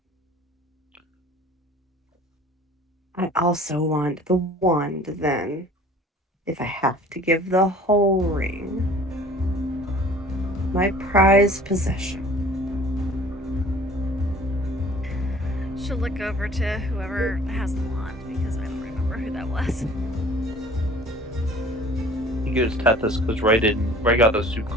I also want the wand then, if I have to give the whole ring. My prized possession. She'll look over to whoever has the wand because I don't remember who that was. He gives Tethys because Ray got the soup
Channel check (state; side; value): normal; both; correlation 0.49